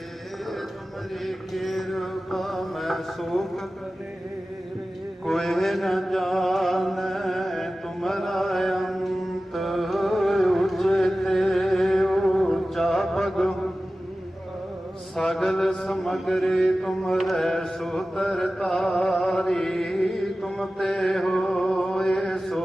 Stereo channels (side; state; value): both; normal; correlation 0.95